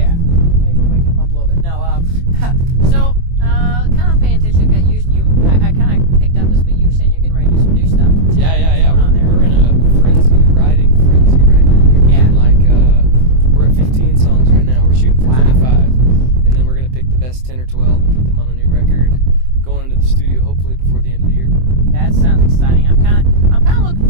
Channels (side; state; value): left; late; 23 ms